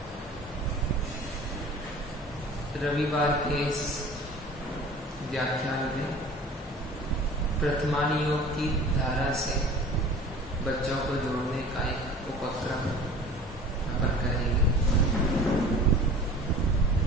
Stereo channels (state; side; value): normal; both; correlation 0.42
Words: रविवार के इस व्याख्यान में प्रथमानी योग की धारा से बच्चों को जोड़ने का एक उपक्रम अपन करेंगे।